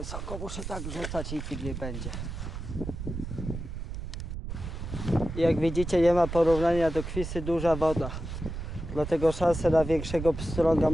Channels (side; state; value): right; noise; rumble, 7 dB below the sound